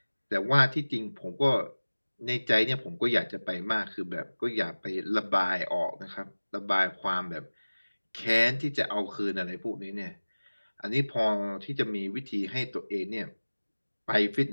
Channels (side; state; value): both; inverted; correlation -1.00